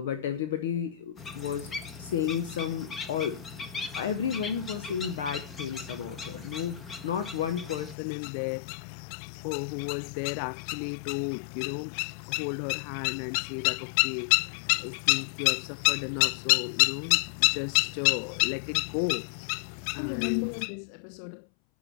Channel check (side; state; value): right; drops out; at 8.0 s